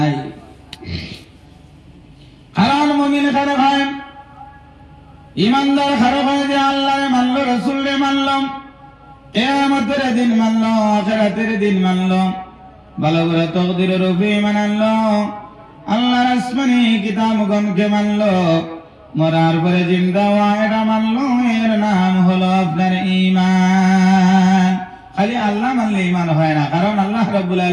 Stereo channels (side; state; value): both; identical; correlation 1.00